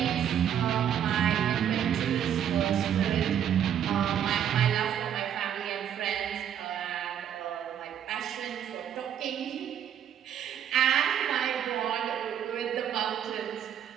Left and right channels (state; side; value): quieter; left; 9.6 dB